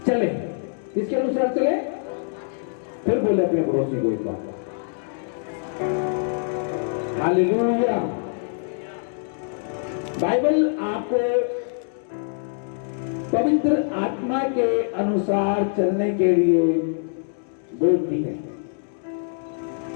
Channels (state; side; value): silent; right; digital silence